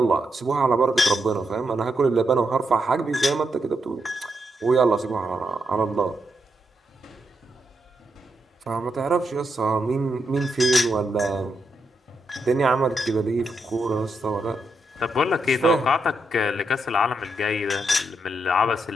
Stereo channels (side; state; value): both; normal; correlation 0.82